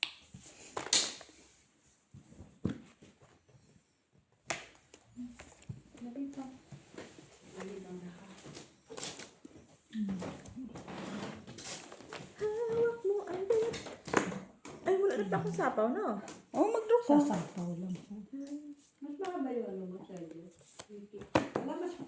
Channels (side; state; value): both; identical; correlation 1.00